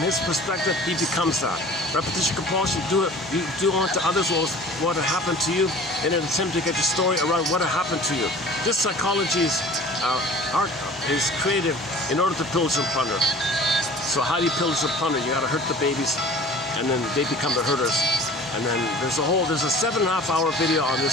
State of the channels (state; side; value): normal; both; correlation 0.44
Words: perspective, he becomes that. Repetition compulsion, you do unto others what had happened to you in an attempt to get your story around what had happened to you. This psychology is creative in order to pillage and plunder. So how do you pillage and plunder? You gotta hurt the babies, and then they become the hurters. And then there's a 7.5-hour video on